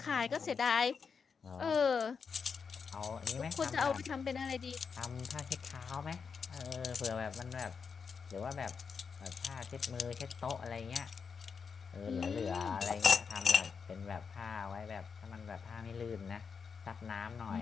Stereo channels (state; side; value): quieter; right; 5.9 dB